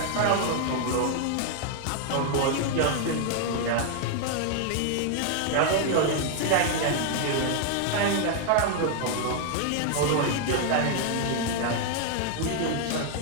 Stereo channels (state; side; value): different; both; correlation 0.00